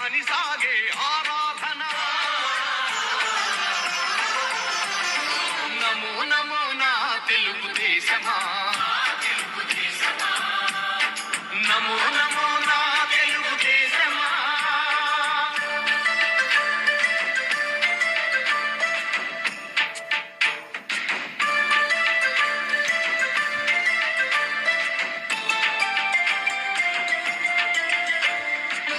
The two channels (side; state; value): both; identical; correlation 1.00